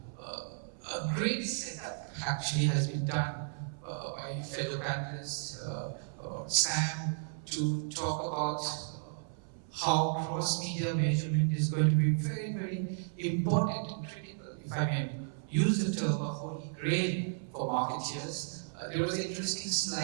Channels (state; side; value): silent; left; 55 dB below the other